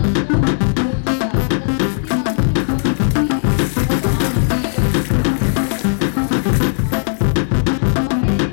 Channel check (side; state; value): right; silent; digital silence